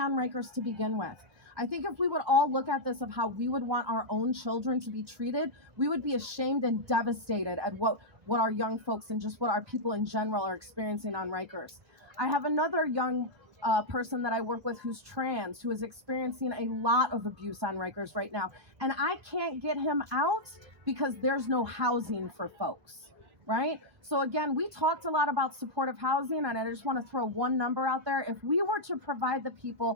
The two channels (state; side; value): late; left; 1.2 ms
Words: Rikers to begin with? I think if we would all look at this of how we would want our own children to be treated, we would be ashamed and devastated at what our young folks and just what our people in general are experiencing on Rikers. I have another young person that I work with who's trans, who is experiencing a lot of abuse on Rikers right now. And I can't get him out because there's no housing for folks, right? So again, we talked a lot about supportive housing, and I just want to throw one number out there. If we were to provide the